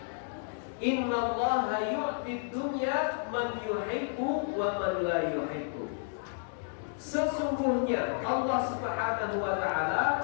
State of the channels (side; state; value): right; silent; digital silence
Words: Innallaha yu'tid dunya man yuhibbu wa man la yuhibbu. Sesungguhnya Allah Subhanahu wa